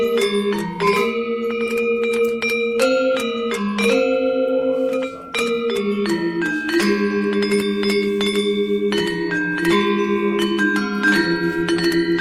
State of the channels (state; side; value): identical; both; correlation 1.00